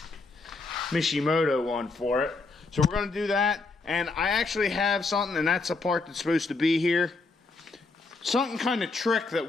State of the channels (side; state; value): right; quieter; 3.8 dB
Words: Mishimoto one for it. So we're going to do that. And I actually have something, and that's a part that's supposed to be here. Something kind of trick that